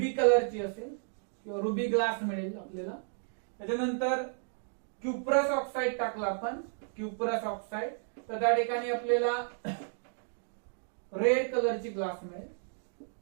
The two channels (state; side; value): silent; left; digital silence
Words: कलरची असेल किंवा रुबी ग्लास मिळेल आपल्याला. त्याच्यानंतर क्युप्रस ऑक्साइड टाकला आपण क्युप्रस ऑक्साइड तर त्या ठिकाणी आपल्याला रेड कलरची ग्लास मिळेल.